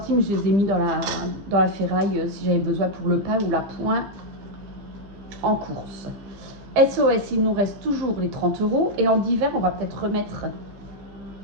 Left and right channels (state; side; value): late; left; 15 ms